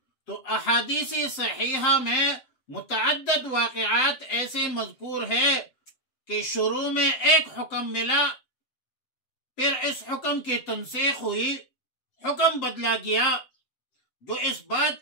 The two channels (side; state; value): right; late; 7.7 ms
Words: تو احادیث صحیحہ میں متعدد واقعات ایسے مذکور ہے کہ شروع میں ایک حکم ملا، پھر اس حکم کی تنسیخ ہوئی، حکم بدلا گیا، جو اس بات